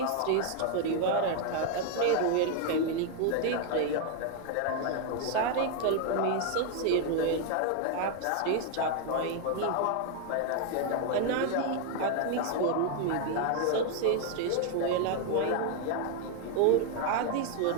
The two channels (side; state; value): both; different; correlation 0.00